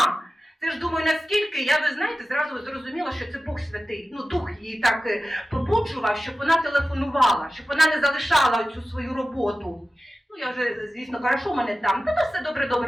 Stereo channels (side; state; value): both; normal; correlation 0.95